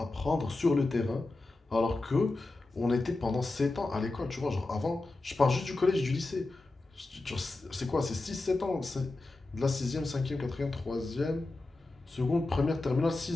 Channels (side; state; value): right; quieter; 3.1 dB